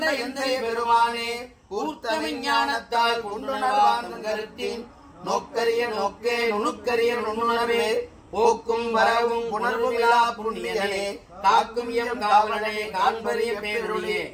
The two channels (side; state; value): both; identical; correlation 1.00